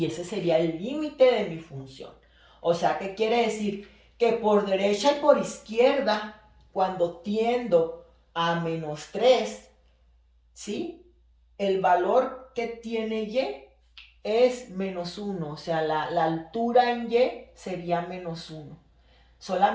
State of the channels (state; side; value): identical; both; correlation 1.00